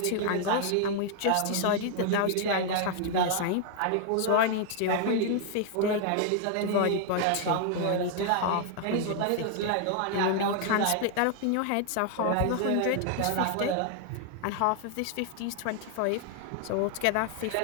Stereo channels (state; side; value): different; both; correlation 0.00